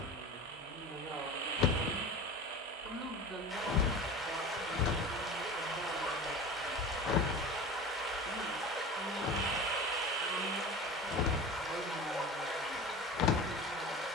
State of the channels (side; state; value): both; normal; correlation 0.34